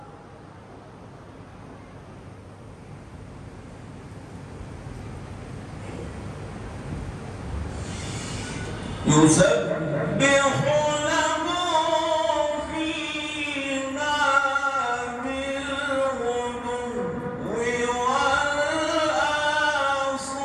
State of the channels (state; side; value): identical; both; correlation 1.00